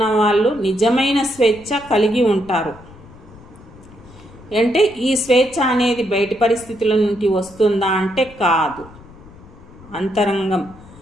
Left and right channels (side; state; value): left; noise; rumble, 21 dB below the sound